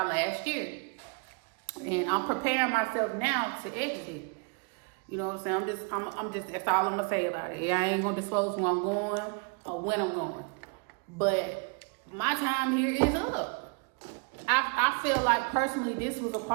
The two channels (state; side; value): quieter; left; 34.0 dB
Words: last year. And I'm preparing myself now to exit. You know what I'm saying? I'm just, that's all I'm gonna say about it. I ain't gonna disclose where I'm going or when I'm going. But my time here is up. I feel like personally this was a